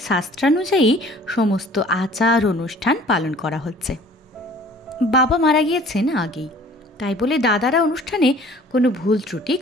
সমস্ত আচার অনুষ্ঠান পালন করা হচ্ছে। বাবা মারা গিয়েছেন আগেই, তাই বলে দাদারা অনুষ্ঠানে কোনো ভুল ত্রুটি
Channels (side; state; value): both; normal; correlation 0.50